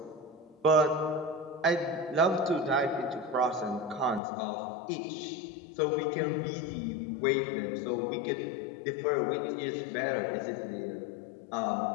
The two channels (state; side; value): drops out; right; at 4.2 s